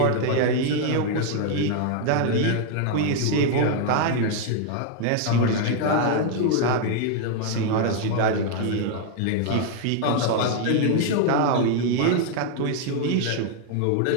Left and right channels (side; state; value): both; different; correlation 0.00